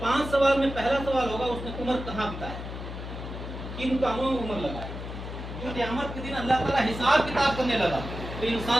سوال میں پہلا سوال ہوگا اس نے عمر کہاں بتایا, کن کاموں میں عمر لگایا. جو قیامت کے دن اللہ تعالیٰ حساب کتاب کرنے لگا تو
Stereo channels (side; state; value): left; noise; hum, 8 dB below the sound